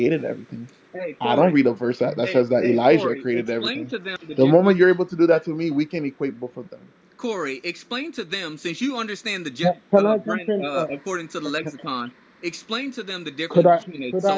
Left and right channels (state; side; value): identical; both; correlation 1.00